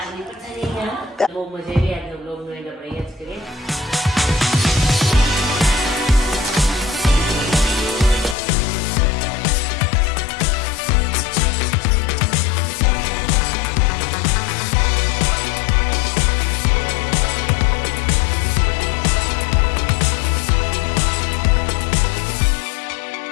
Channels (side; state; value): right; drops out; at 8.3 s